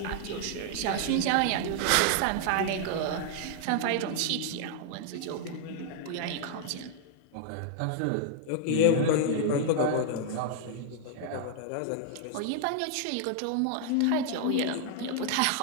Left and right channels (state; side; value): different; both; correlation 0.00